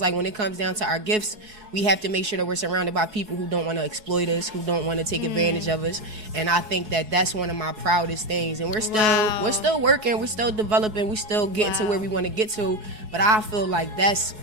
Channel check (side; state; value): left; late; 4.7 ms